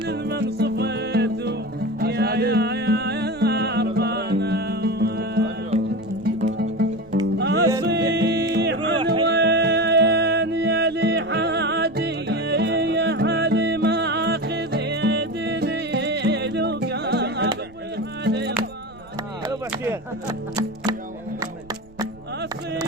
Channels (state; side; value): noise; right; rumble, 23 dB below the sound